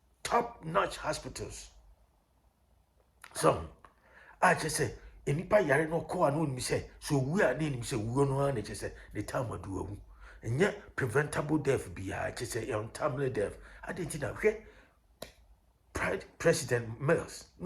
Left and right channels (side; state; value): both; identical; correlation 1.00